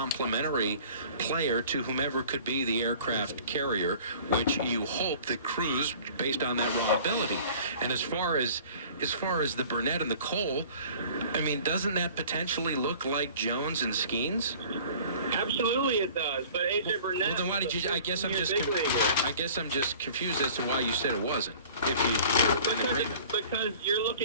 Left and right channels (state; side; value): inverted; both; correlation -0.47